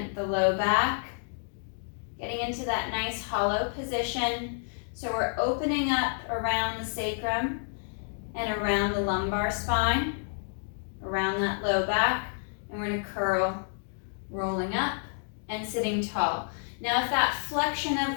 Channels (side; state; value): right; silent; digital silence